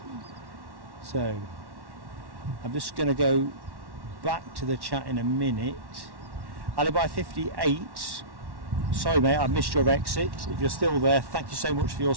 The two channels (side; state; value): left; late; 1.1 ms